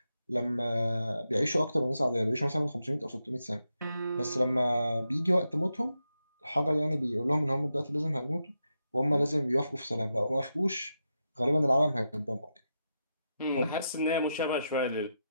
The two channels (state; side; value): inverted; both; correlation -0.86